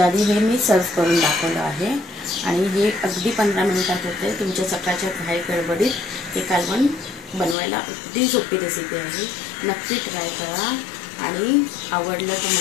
आधी हे मी सर्व करून दाखवलं आहे आणि हे अगदी 15 मिनिटात होते. तुमच्या सकाळच्या घाई गडबडीत हे कालवण बनवायला अगदी सोपी रेसिपी आहे. नक्की ट्राय करा आणि आवडलं तर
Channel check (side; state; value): right; drops out; at 7.6 s